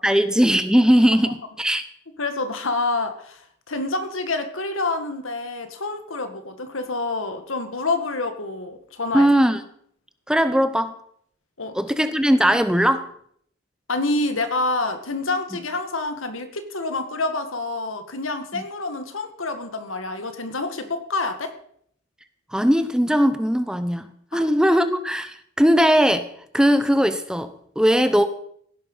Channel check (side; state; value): both; normal; correlation 0.72